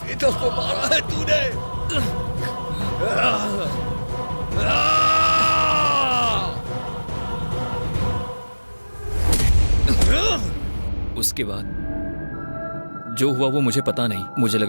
बेटा को मारा है तूने। उसके बाद जो हुआ वो मुझे पता नहीं। मुझे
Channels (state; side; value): inverted; both; correlation -1.00